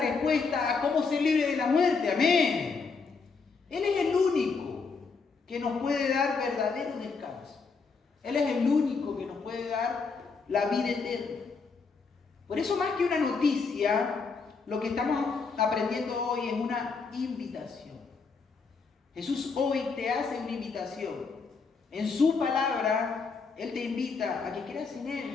a cómo ser libre de la muerte. Amén. Él es el único que nos puede dar verdadero descanso. Él es el único que nos puede dar la vida eterna. Por eso, más que una noticia, lo que estamos aprendiendo hoy es una invitación. Jesús hoy te hace una invitación. En su palabra, Él te invita a que creas en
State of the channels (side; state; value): right; quieter; 4.8 dB